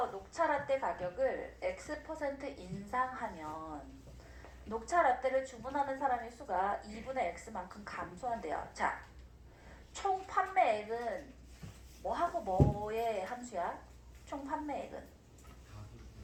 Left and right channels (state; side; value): identical; both; correlation 1.00